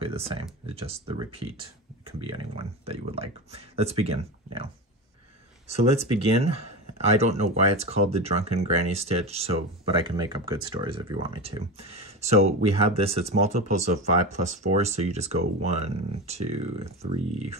the same. It's just the repeat. Can be anyone that you would like. Let's begin now. So let's begin. I don't know why it's called the Drunken Granny Stitch, but I can make up good stories if you want me to. So we have this, it's multiples of 5 plus 4, so you just go 1, 2, 3,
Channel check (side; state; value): both; normal; correlation 0.23